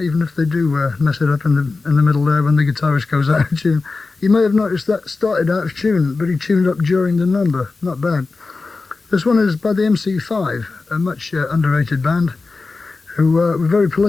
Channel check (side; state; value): right; quieter; 3.9 dB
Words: if they do mess it up in the middle there when the guitarist goes out of tune. You may have noticed that started out of tune, but he tuned up during the number. Not bad. This one is by the MC5, a much underrated band who were very